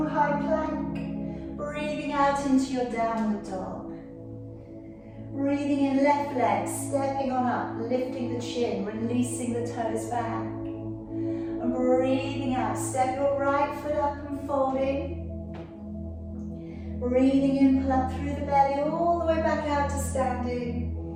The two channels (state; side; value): identical; both; correlation 1.00